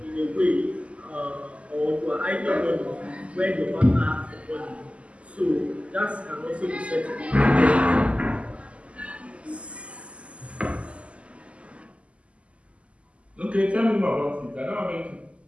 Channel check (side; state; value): left; late; 0.059 ms